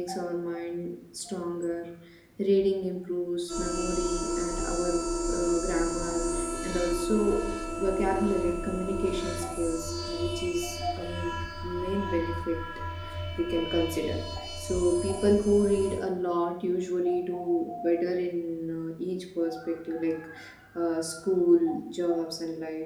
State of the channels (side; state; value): both; identical; correlation 1.00